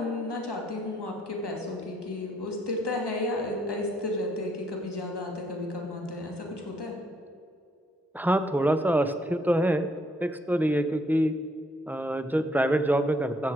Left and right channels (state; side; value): normal; both; correlation 0.70